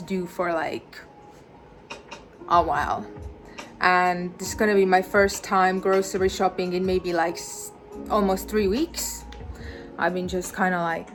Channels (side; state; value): both; identical; correlation 1.00